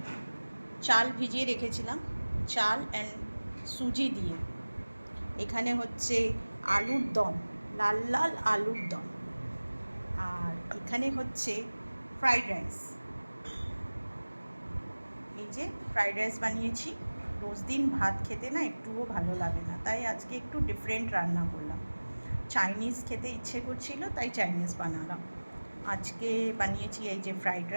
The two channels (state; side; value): inverted; both; correlation -1.00